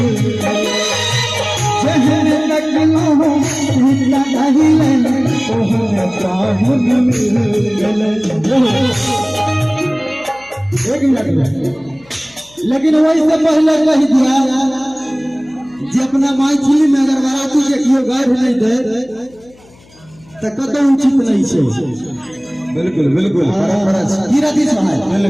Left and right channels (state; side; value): noise; left; hum, 27 dB below the sound